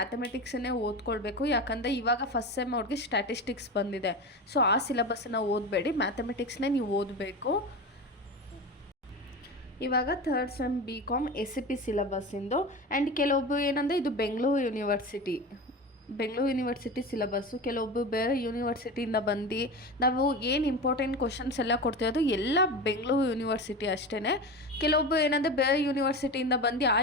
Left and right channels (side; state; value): both; normal; correlation 0.26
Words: ಓದ್ಕೊಳ್ಬೇಕು. ಯಾಕಂದರೆ ಇವಾಗ ಫಸ್ಟ್ ಸೆಮ್ ಅವ್ರಿಗೆ ಸ್ಟ್ಯಾಟಿಸ್ಟಿಕ್ಸ್ ಬಂದಿದೆ. ಸೊ ಆ ಸಿಲೆಬಸ್ಸನ್ನು ಓದಬೇಡಿ, ಮ್ಯಾಥಮೆಟಿಕ್ಸ್ನೇ ನೀವು ಓದಬೇಕು. ಇವಾಗ ಥರ್ಡ್ ಸೆಮ್ BCom SCP ಸಿಲೆಬಸ್ಸಿಂದು. ಆ್ಯಂಡ್ ಕೆಲವೊಬ್ಬರು ಏನಂದರೆ ಇದು ಬೆಂಗಳೂರು ಯೂನಿವರ್ಸಿಟಿ ಸಿಲೆಬಸ್ಸು. ಕೆಲವೊಬ್ಬರು ಬೇರೆ ಯೂನಿವರ್ಸಿಟಿಯಿಂದ ಬಂದು ನಾವು ಏನು ಇಂಪಾರ್ಟೆಂಟ್ ಕ್ವಶನ್ಸ್ ಎಲ್ಲ ಕೊಡ್ತಿರೋದು ಎಲ್ಲ ಬೆಂಗಳೂರು ಯೂನಿವರ್ಸಿಟಿ ಅಷ್ಟೇ. ಕೆಲವೊಬ್ಬರು ಏನಂದರೆ ಬೇರೆ ಯೂನಿವರ್ಸಿಟಿಯಿಂದ ಬಂದು ಆ